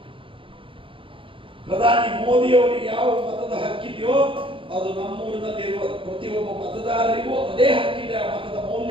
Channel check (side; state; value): left; late; 0.25 ms